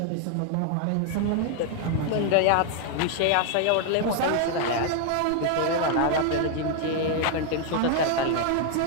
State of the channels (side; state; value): both; different; correlation 0.00